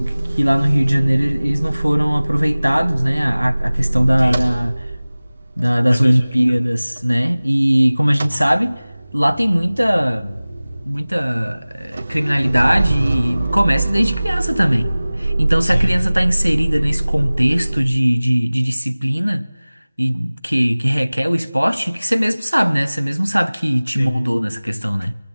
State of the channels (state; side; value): inverted; both; correlation -0.99